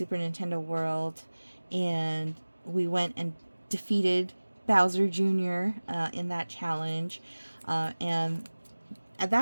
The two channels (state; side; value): inverted; both; correlation -1.00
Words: Nintendo World. And we went and defeated Bowser Jr. In that challenge. And at